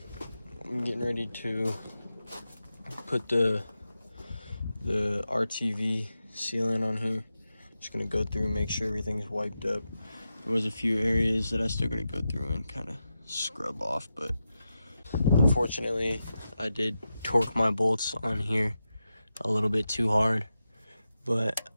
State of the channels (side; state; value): both; inverted; correlation -0.90